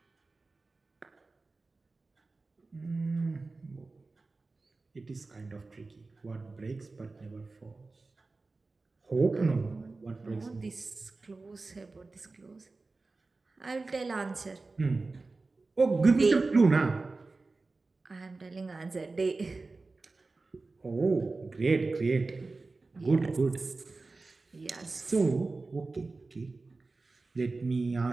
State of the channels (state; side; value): quieter; left; 3.6 dB